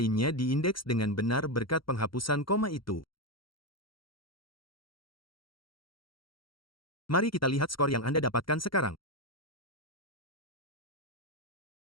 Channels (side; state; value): right; late; 0.73 ms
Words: diindeks dengan benar berkat penghapusan koma itu. Mari kita lihat skor yang Anda dapatkan sekarang.